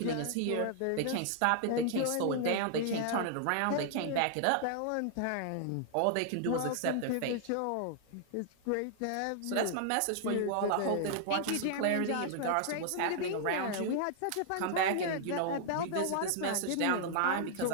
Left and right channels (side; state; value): both; different; correlation -0.01